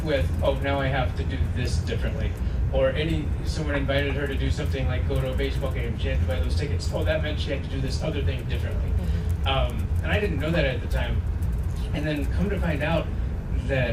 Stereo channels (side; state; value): both; identical; correlation 1.00